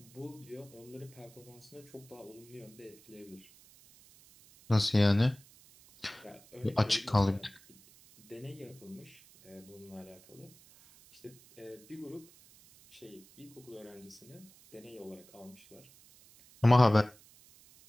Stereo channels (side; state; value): right; noise; hiss, 24 dB below the sound